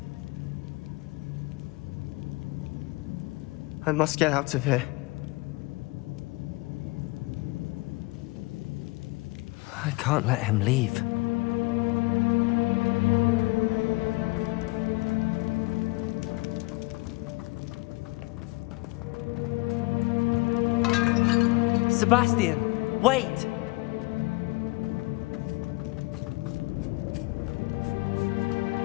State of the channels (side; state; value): right; quieter; 24.4 dB